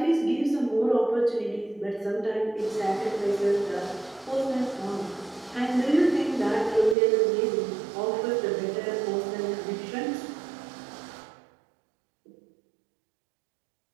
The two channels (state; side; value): drops out; left; at 7.0 s